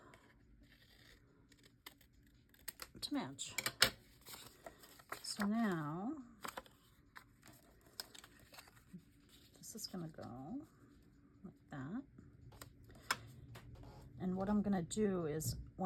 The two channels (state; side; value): identical; both; correlation 1.00